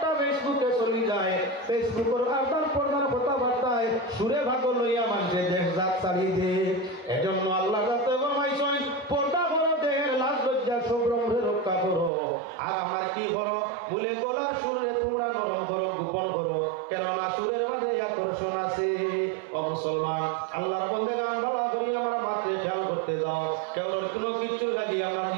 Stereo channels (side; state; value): left; drops out; at 12.1 s